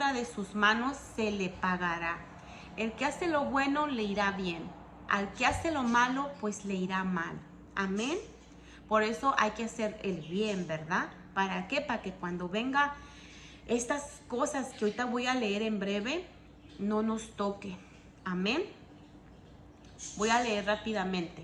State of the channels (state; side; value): identical; both; correlation 1.00